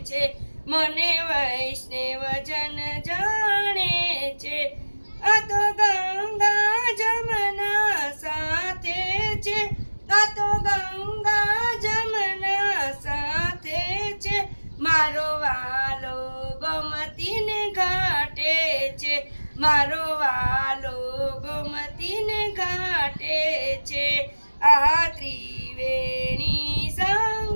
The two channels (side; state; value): both; inverted; correlation -1.00